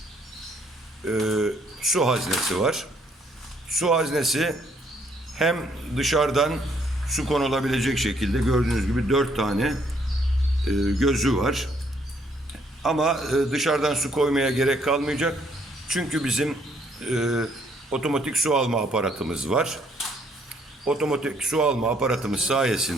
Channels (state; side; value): normal; both; correlation 0.67